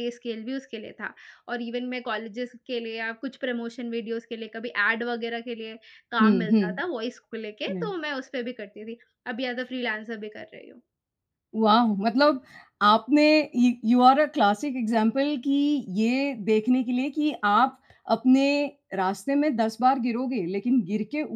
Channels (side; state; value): both; identical; correlation 1.00